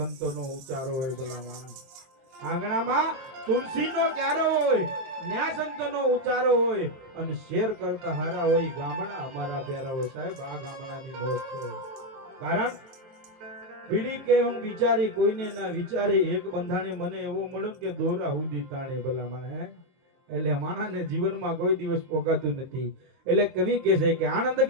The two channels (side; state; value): left; late; 23 ms